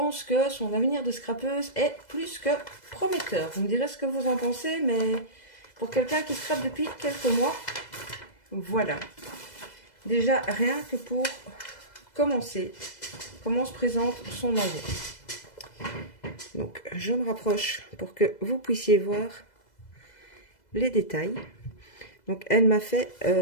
que son avenir de scrapeuse est plus que prometteur. Vous me direz ce que vous en pensez, mais pour quelqu'un qui scrape depuis quelques mois, voilà. Déjà, rien que pour commencer, comment se présente son envoi. Donc, je me rapproche pour que vous puissiez voir les détails. Donc, elle m'a fait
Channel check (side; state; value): right; late; 2.0 ms